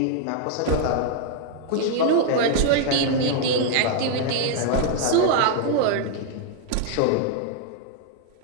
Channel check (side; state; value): both; different; correlation 0.00